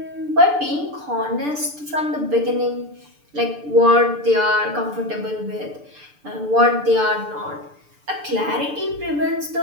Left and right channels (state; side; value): late; left; 6.8 ms